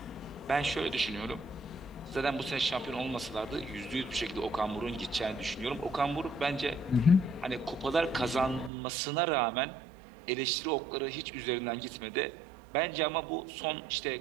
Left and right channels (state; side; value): drops out; left; at 8.7 s